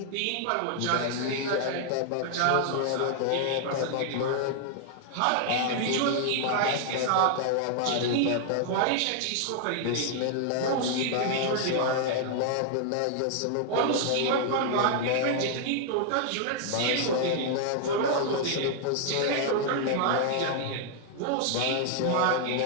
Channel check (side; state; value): both; different; correlation 0.00